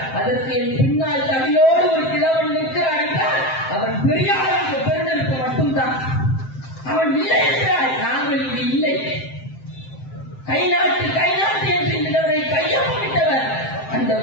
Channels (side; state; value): right; late; 7.6 ms